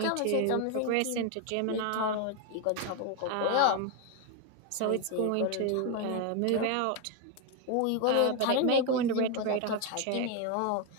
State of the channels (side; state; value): both; different; correlation 0.01